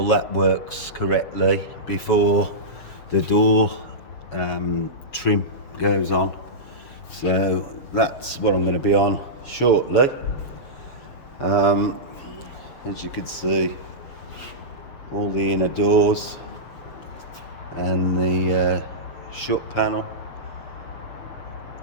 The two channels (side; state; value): right; late; 7.2 ms